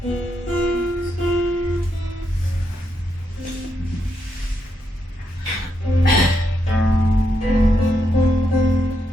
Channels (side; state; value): both; normal; correlation 0.81